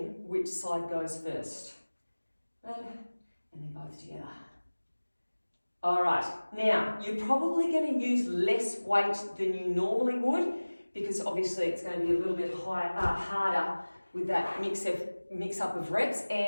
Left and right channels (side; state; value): both; inverted; correlation -1.00